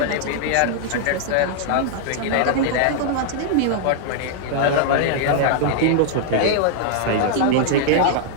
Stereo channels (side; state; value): both; different; correlation -0.01